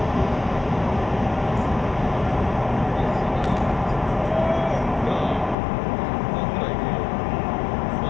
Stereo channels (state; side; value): drops out; right; at 5.6 s